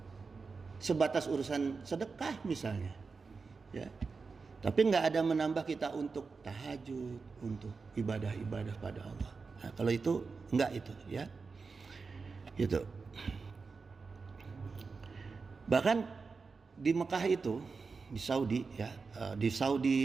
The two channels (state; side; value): quieter; left; 4.6 dB